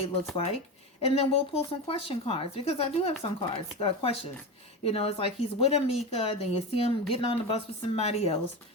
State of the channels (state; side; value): normal; both; correlation 0.21